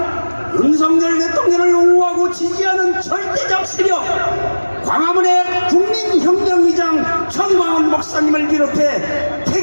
윤석열 대통령을 옹호하고 지지하는 절대적 세력 광화문의 국민혁명의장 정광훈 목사님을 비롯해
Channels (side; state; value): both; inverted; correlation -1.00